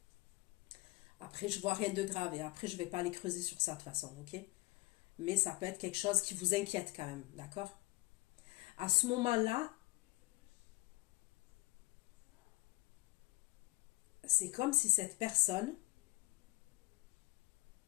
Après, je vois rien de grave, et après, je ne vais pas aller creuser sur ça de toute façon, ok? Mais ça peut être quelque chose qui vous inquiète quand même, d'accord? À ce moment-là, c'est comme si cette personne,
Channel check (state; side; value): quieter; right; 23.2 dB